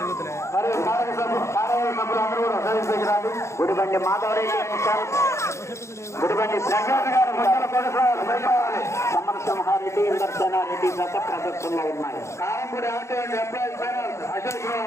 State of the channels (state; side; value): late; right; 0.14 ms